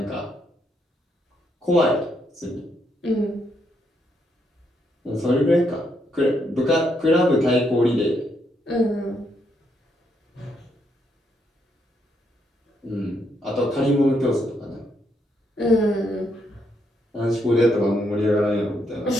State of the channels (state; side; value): normal; both; correlation 0.76